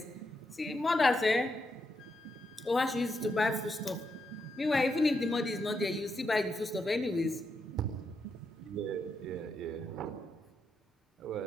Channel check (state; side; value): normal; both; correlation 0.82